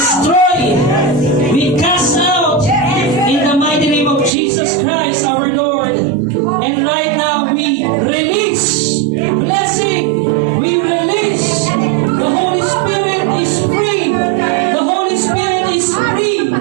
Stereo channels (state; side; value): drops out; left; at 4.3 s